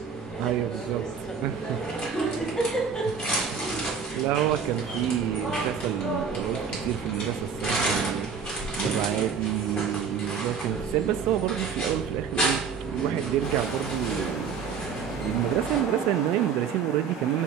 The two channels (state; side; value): quieter; left; 6.6 dB